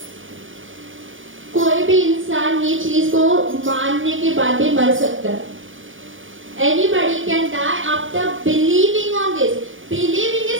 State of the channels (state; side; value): late; left; 0.57 ms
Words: कोई भी इंसान ये चीज को मानने के बाद भी मर सकता है. Anybody can die after believing on this. Believing